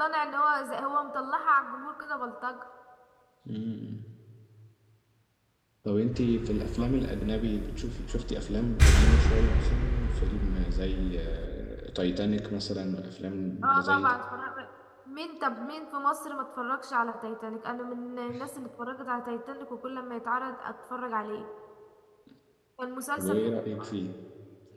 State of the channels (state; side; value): identical; both; correlation 1.00